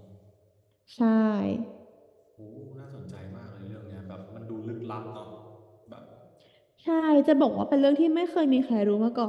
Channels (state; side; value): identical; both; correlation 1.00